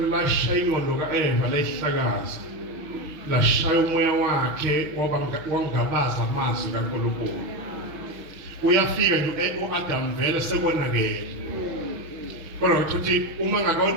lashaya ingqondo kaEva layihlakaza lashaya umoya wakhe wangabaza amazwi kaNkulunkulu uyafika nje uAdam vele sekonakele kodwa ukuthi uma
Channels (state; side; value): late; left; 5.9 ms